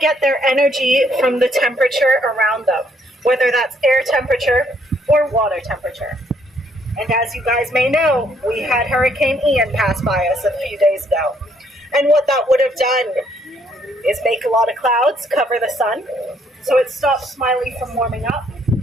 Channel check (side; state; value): both; normal; correlation 0.68